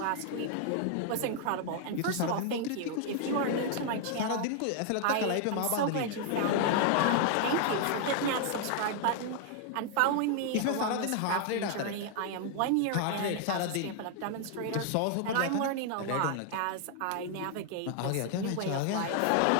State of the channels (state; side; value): different; both; correlation 0.00